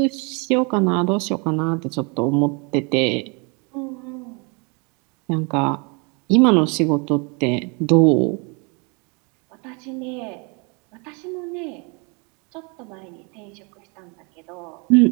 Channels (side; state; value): left; quieter; 32.3 dB